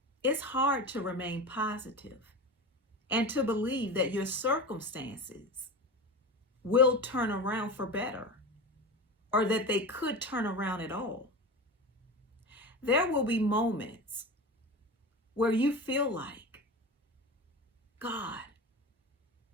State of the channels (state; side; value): normal; both; correlation 0.27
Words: it's hard to remain positive and to believe that your circumstances will turn around for better, or that they could turn around at all. There will be moments where you feel like, God,